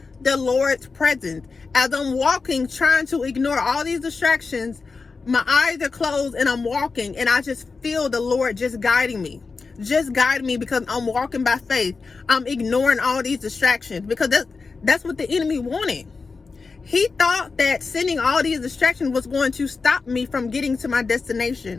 the Lord's presence. As I'm walking, trying to ignore all these distractions, my eyes are closed and I'm walking, and I just feel the Lord just guiding me. Just guide me, because I'm walking by faith. I'm ignoring all these distractions, because that's what the enemy wanted. He thought that sending all these distractions was going to stop me from getting to my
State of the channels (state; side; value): quieter; right; 4.5 dB